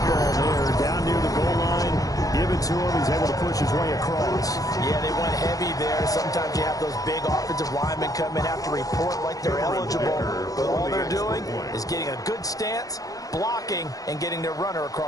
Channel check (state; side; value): late; right; 0.17 ms